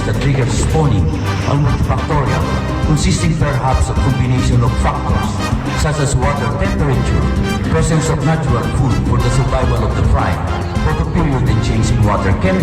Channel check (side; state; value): both; identical; correlation 1.00